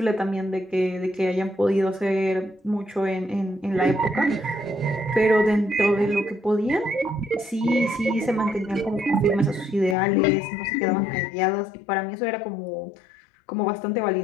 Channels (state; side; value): drops out; right; at 10.0 s